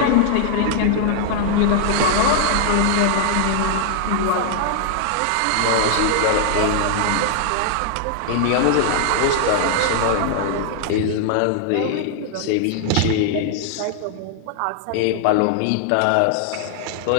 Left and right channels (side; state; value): both; different; correlation -0.01